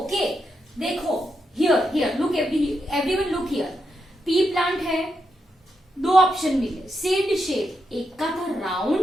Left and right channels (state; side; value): normal; both; correlation 0.83